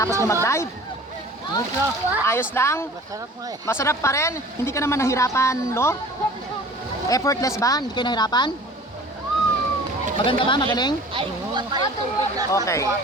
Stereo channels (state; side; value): normal; both; correlation 0.45